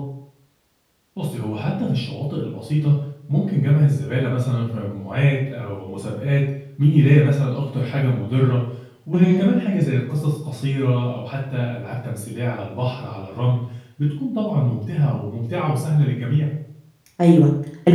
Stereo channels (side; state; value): both; identical; correlation 1.00